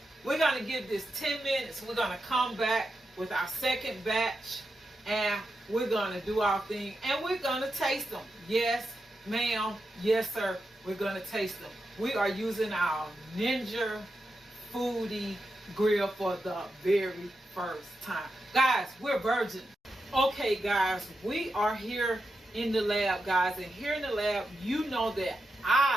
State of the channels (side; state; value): both; normal; correlation 0.88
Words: we're going to give this 10 minutes. We're going to come back with our second batch, and we're going to do our thing, and we're going to taste them. Yes, ma'am. Yes, sir. We're going to taste them. We are using our Ninja Foodi grill for the very first time. Guys, we're virgin. Okay, guys, we are here in the lab, guys, and here in the lab, you know that